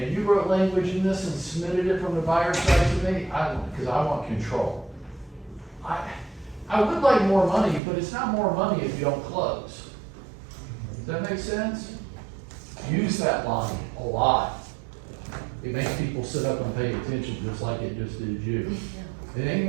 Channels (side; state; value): left; drops out; at 7.8 s